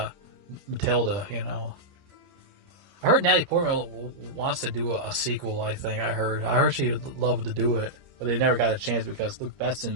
Matilda, I heard Natalie Portman wants to do a sequel. I heard she'd love to do it, but they never got a chance because Luke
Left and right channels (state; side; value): late; left; 29 ms